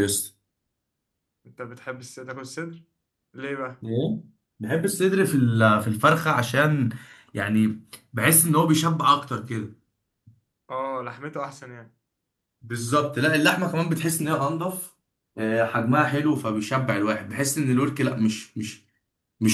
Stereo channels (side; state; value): both; identical; correlation 1.00